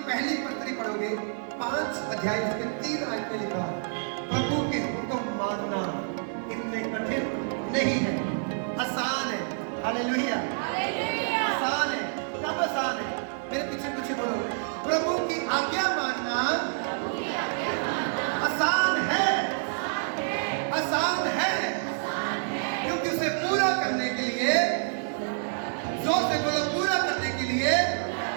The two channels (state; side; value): silent; left; digital silence